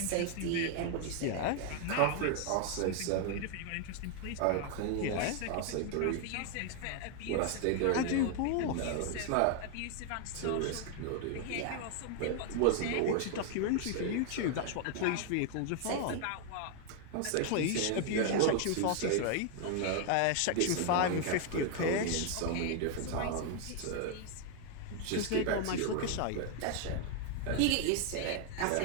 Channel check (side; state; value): both; different; correlation 0.00